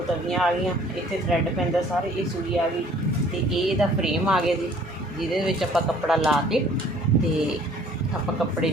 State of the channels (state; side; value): normal; both; correlation 0.54